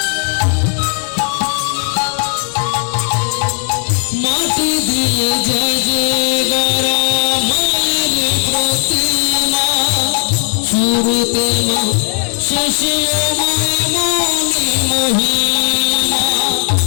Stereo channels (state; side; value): silent; right; 57 dB below the other